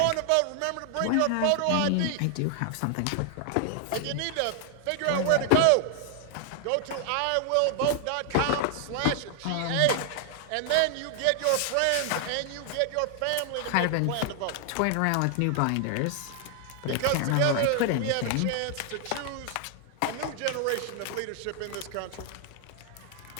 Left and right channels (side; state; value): both; different; correlation 0.00